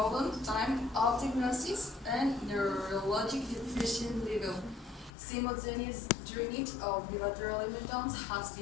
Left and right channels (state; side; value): drops out; right; at 5.1 s